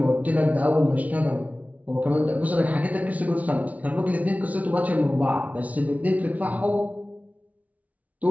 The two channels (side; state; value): left; late; 0.070 ms